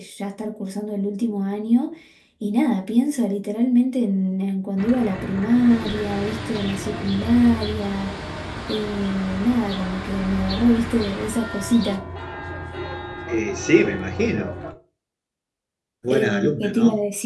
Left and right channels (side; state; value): both; identical; correlation 1.00